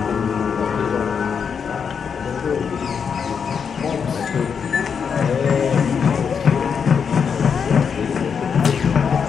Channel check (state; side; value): quieter; right; 6.6 dB